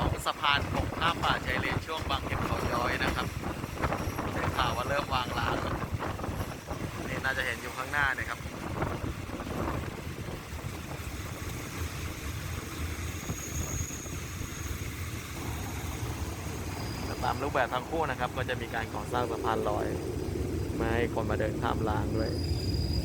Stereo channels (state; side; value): identical; both; correlation 1.00